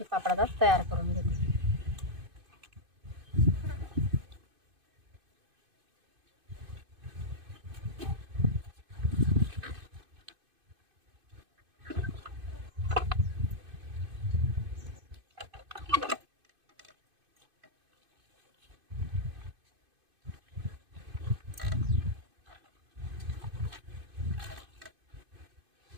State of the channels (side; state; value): left; late; 2.5 ms